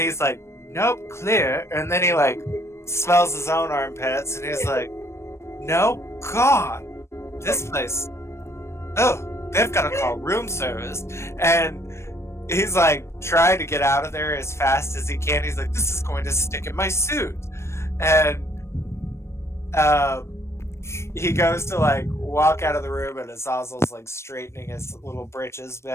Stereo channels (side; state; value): right; late; 0.13 ms